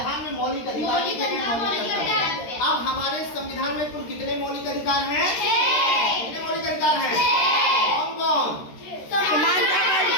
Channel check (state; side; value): late; right; 13 ms